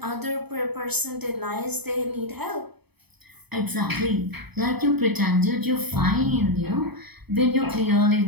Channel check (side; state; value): left; late; 0.98 ms